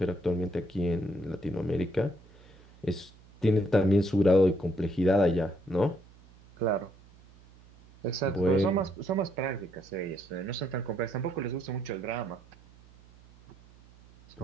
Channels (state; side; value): noise; right; hum, 25 dB below the sound